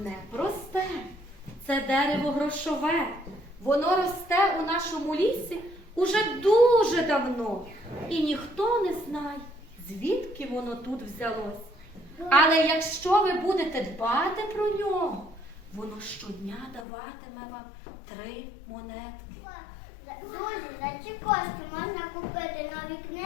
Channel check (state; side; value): drops out; right; at 16.9 s